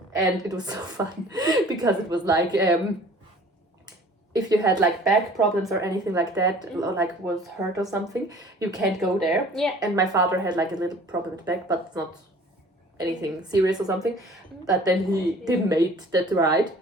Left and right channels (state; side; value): normal; both; correlation 0.48